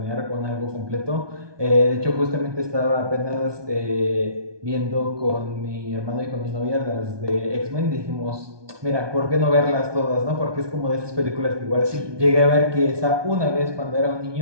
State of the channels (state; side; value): late; left; 1.2 ms